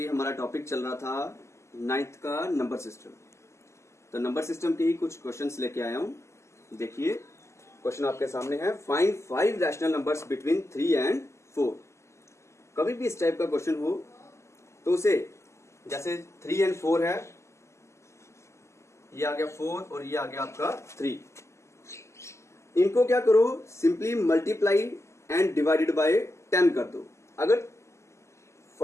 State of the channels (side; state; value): right; late; 0.13 ms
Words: हमारा टॉपिक चल रहा था नाइन्थ का नंबर सिस्टम, तो नंबर सिस्टम के ही कुछ क्वेश्चंस लेके आया हूं। देखिए क्वेश्चन आपके सामने है, find 5 rational numbers between 3 and 4। कभी भी इस टाइप का क्वेश्चन हो तो उसे, जैसे 3 एंड 4 है, ये आ गया 4 और ये आ गया आपका 3, इनको क्या करो, simply multiply and divided by 10 कर दो। अगर